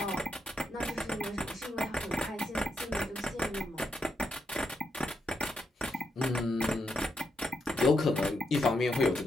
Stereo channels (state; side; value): normal; both; correlation 0.82